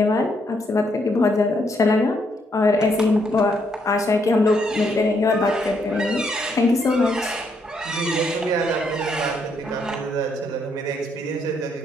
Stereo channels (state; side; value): normal; both; correlation 0.74